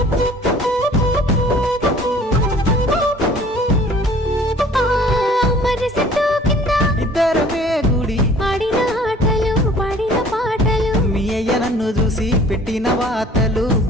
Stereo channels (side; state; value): both; normal; correlation 0.51